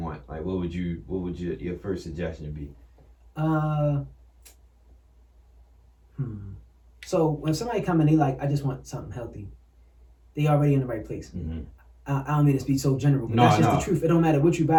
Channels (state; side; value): identical; both; correlation 1.00